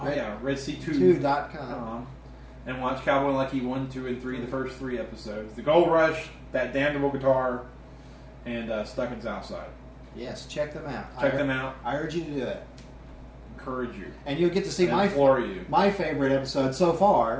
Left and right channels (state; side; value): identical; both; correlation 1.00